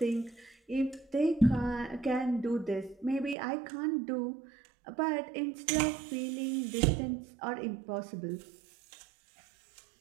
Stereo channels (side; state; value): left; drops out; at 3.4 s